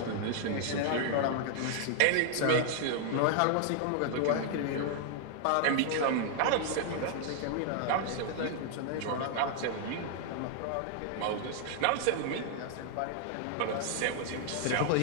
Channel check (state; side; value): different; both; correlation 0.00